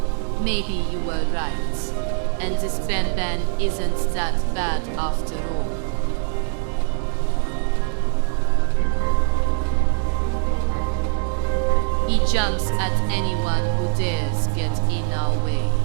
Maybe you were right, and this Banban isn't that bad after all. He jumps at anyone who dares get in our way.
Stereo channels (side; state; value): left; silent; 58 dB below the other